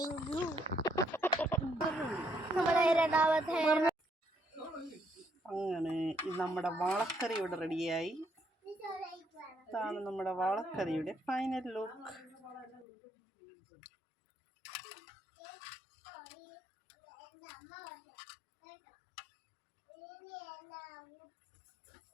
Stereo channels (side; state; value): right; drops out; at 12.9 s